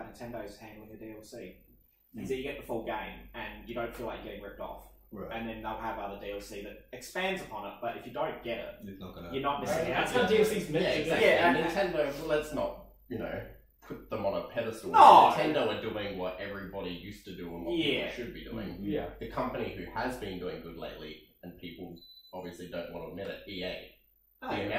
Nintendo's handling the DLC. Is that you get the full game and you don't feel like you're getting ripped off. Right. And then they'll have other DLC that expands upon it. But if you don't get it, It's not gonna. you're not missing out. That's how DLC's meant Yeah, to be. exactly. Yeah, and Nintendo, well, let's not, put them on a pedestal. No. Nintendo are doing what everybody used to do and what Yeah. people should be doing. Yeah. The company who has been doing good lately, and people obviously don't want to admit it, EA. The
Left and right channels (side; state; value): both; identical; correlation 1.00